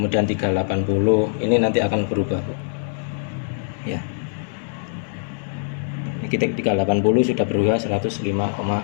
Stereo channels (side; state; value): right; silent; digital silence